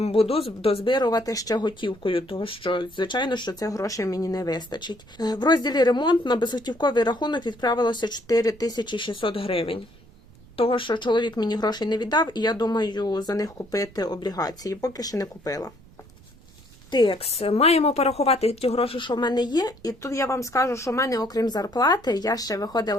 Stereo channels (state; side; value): noise; right; rumble, 24 dB below the sound